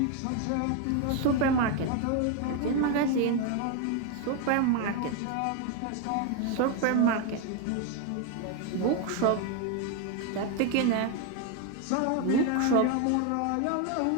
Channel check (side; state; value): both; different; correlation 0.01